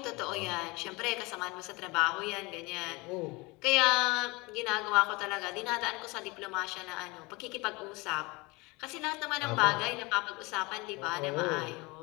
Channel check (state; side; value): quieter; right; 24.9 dB